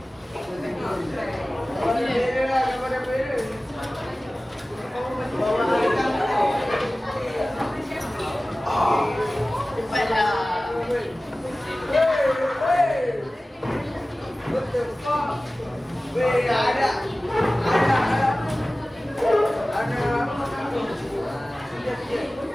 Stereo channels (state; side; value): normal; both; correlation 0.97